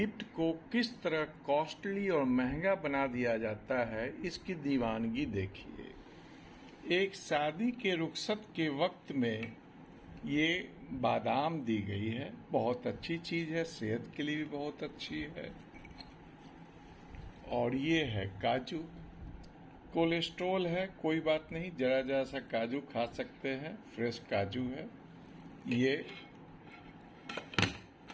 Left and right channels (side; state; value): both; identical; correlation 1.00